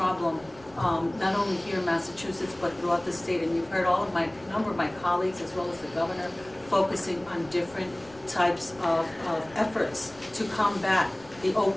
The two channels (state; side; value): noise; left; rumble, 25 dB below the sound